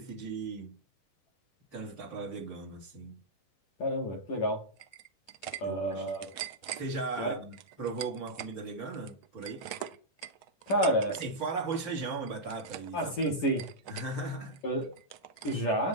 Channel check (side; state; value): right; late; 10 ms